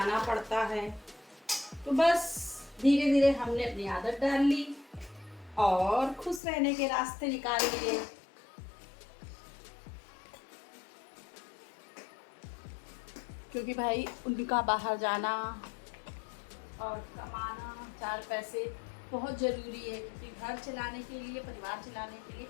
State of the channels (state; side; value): drops out; right; at 6.4 s